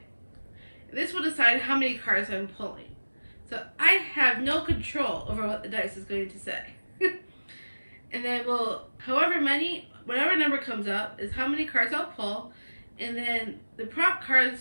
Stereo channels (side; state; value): both; inverted; correlation -1.00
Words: This will decide how many cards I'm pulling. So I have no control over what the dice is going to say. And then whatever number comes up is how many cards I'll pull. And then the prop